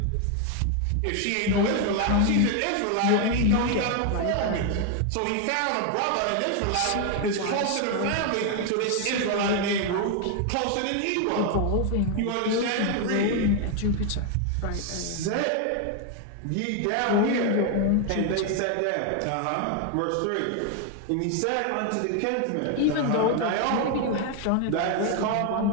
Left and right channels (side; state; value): both; different; correlation 0.01